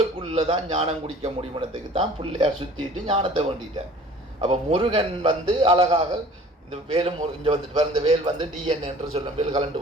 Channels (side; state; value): both; normal; correlation 0.48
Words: தான் ஞானம் குடிக்க முடியுமனத்துக்கு தான் பிள்ளையார் சுற்றிட்டு ஞானத்தை வேண்டிட்டார். அப்போ முருகன் வந்து அழகாக இந்த வேலும் இங்கே வந்துட்டு இந்த வேல் வந்து டிஎன்ஏ என்று சொல்லும், வேல் கலண்டு